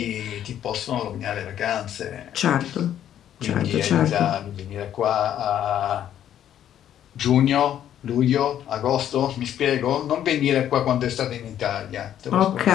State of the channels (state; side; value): quieter; right; 10.7 dB